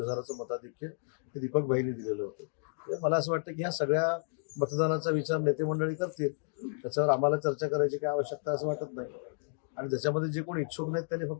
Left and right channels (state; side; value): silent; right; digital silence